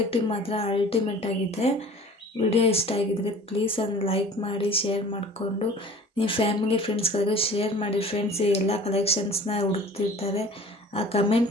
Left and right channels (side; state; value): both; normal; correlation 0.45